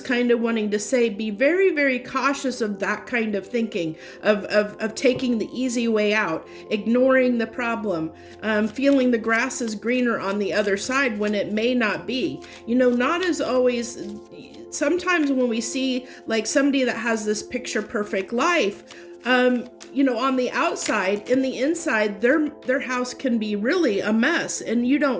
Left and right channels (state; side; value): identical; both; correlation 1.00